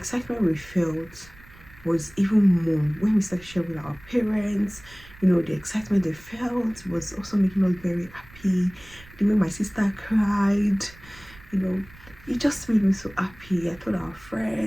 we felt was even more when we started sharing with our parents. You know, the excitement they felt was also making us very happy. The way my sister cried, you know, it just made me so happy. I told our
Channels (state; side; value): noise; right; rumble, 22 dB below the sound